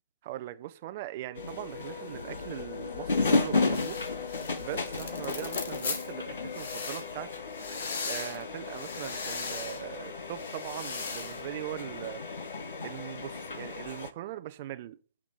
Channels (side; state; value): both; inverted; correlation -0.60